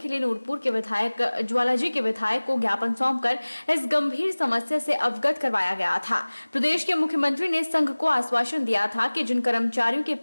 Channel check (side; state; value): both; inverted; correlation -1.00